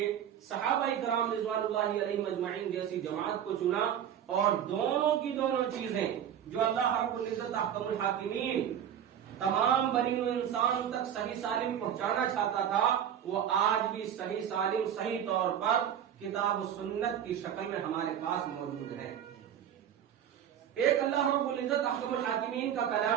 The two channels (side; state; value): left; quieter; 9.5 dB